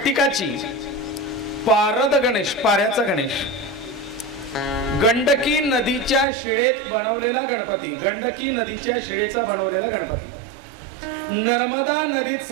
पारद गणेश, पाऱ्याचा गणेश, गंडकी नदीच्या शिळेत बनवलेला गणपती, गंडकी नदीच्या शिळेचा बनवलेला गणपती, नर्मदा नदीत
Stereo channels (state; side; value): drops out; left; at 6.2 s